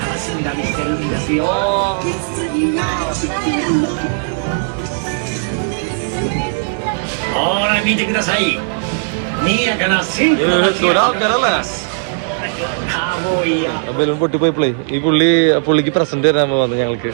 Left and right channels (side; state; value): left; silent; digital silence